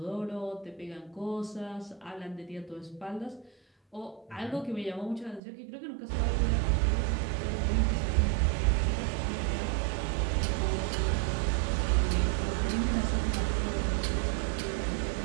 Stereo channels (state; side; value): drops out; left; at 5.4 s